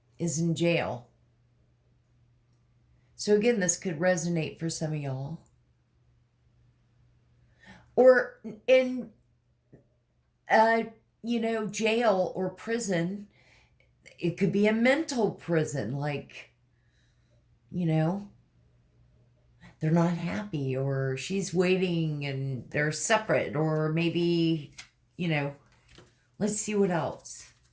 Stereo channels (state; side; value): identical; both; correlation 1.00